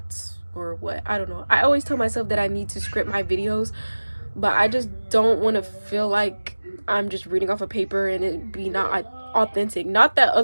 or what. I don't know. I always tell myself that I need to script my videos, but I just don't want to feel like I'm just reading off a paper and it be not authentic. Not that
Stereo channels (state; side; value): inverted; both; correlation -1.00